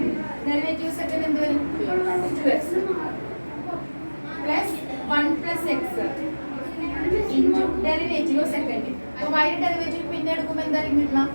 ഡെറിവേറ്റീവ് സെക്കൻഡ് എന്ത് വരും 2x plus 1 plus x into derivative of second. അപ്പോൾ y യുടെ ഡെറിവേറ്റീവ് പിന്നെ എടുക്കുമ്പോൾ എന്തായിരിക്കും കിട്ടുക?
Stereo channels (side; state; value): both; inverted; correlation -1.00